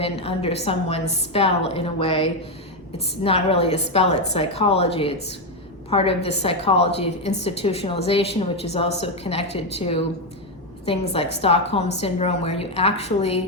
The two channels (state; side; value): normal; both; correlation 0.06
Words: under someone's spell in a way. It's not really a spell, it's psychology. It's part of the psychology of institutionalization, which is also connected to things like Stockholm Syndrome, where you